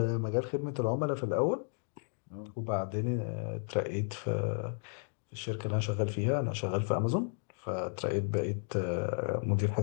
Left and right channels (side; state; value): right; silent; 55 dB below the other